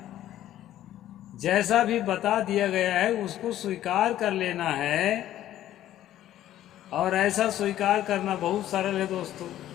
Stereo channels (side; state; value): right; quieter; 12.7 dB